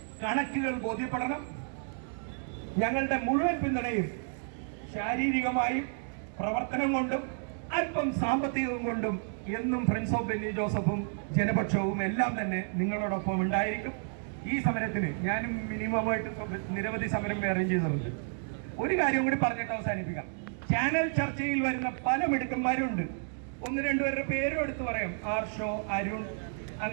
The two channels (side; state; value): left; silent; 57 dB below the other